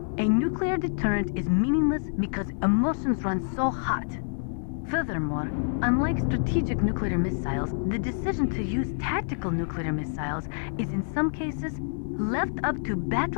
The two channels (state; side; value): silent; right; digital silence